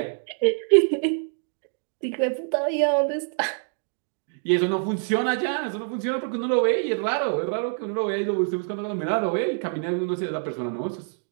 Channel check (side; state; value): left; silent; 61 dB below the other